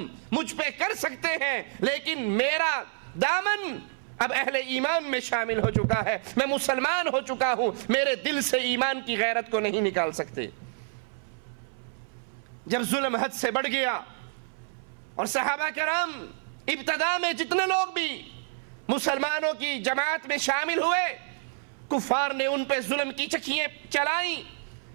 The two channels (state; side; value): silent; left; 59 dB below the other